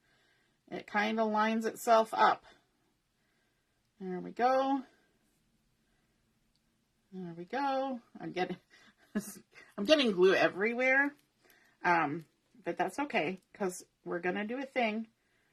it kind of lines itself up. There we go. There we go. I'm getting glue everywhere. But that's okay, because we're going to do a thing.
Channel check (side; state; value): both; identical; correlation 1.00